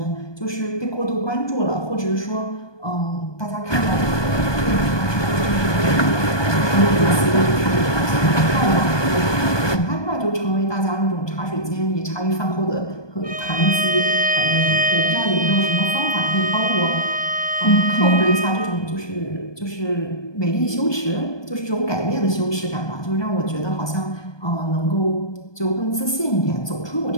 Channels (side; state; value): right; late; 1.2 ms